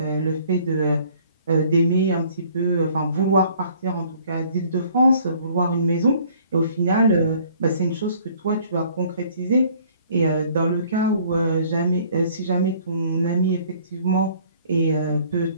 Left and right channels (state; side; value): inverted; both; correlation -0.57